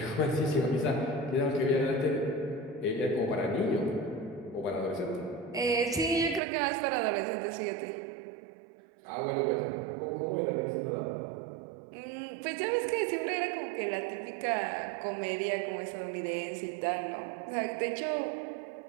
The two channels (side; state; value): left; drops out; at 6.4 s